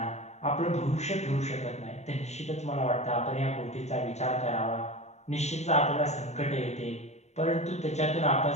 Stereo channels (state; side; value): late; right; 0.32 ms